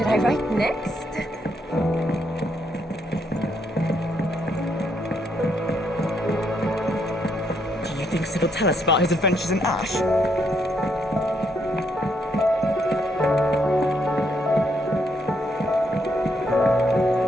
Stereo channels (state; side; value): normal; both; correlation 0.75